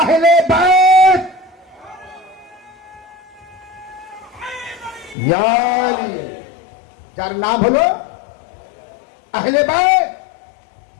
আহলে বাইত। যার নাম হলো আহলে বাইত।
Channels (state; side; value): drops out; right; at 5.2 s